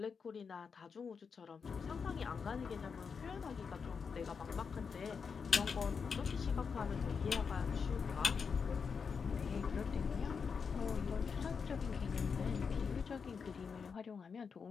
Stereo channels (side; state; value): right; quieter; 5.8 dB